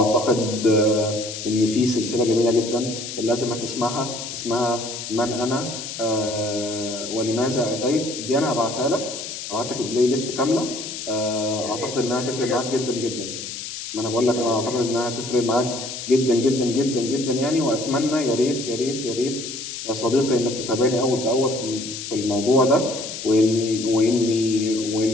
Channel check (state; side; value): noise; left; hiss, 8 dB below the sound